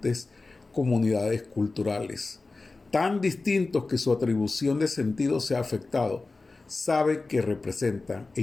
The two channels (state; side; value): quieter; right; 3.6 dB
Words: comunidades culturales, tan distintos que su atribución de sentido se ha afectado. Saben que representan,